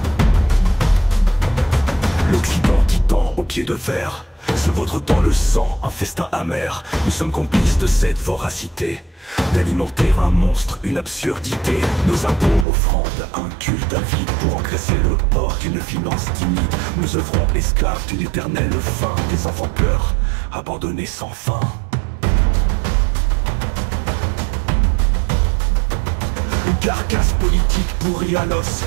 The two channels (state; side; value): drops out; left; at 12.7 s